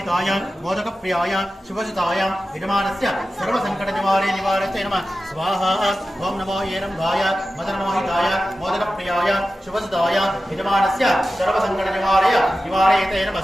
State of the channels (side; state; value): both; normal; correlation 0.94